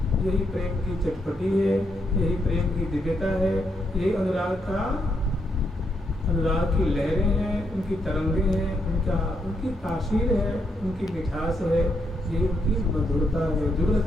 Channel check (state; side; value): normal; both; correlation 0.78